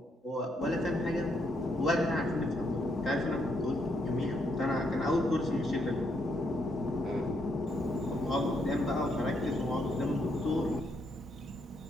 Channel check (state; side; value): normal; both; correlation 0.75